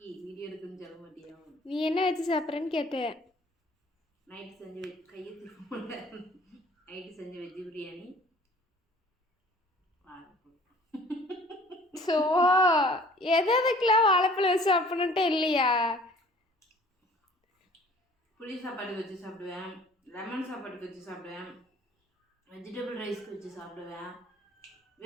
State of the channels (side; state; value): both; normal; correlation 0.52